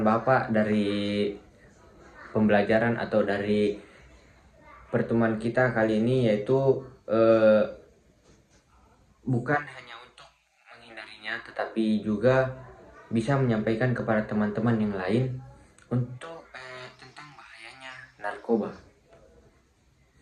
Bapak dari pembelajaran atau dari pertemuan kita kali ini yaitu bukan hanya untuk menghindarinya, tetapi juga bisa menyampaikan kepada teman-teman yang lain untuk tentang bahayanya narkoba.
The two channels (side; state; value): both; identical; correlation 1.00